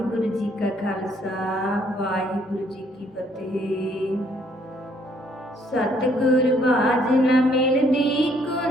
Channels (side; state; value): both; normal; correlation 0.66